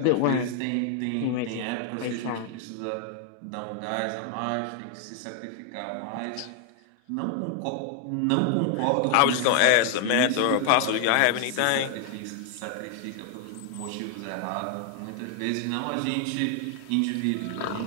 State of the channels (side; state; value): both; different; correlation 0.00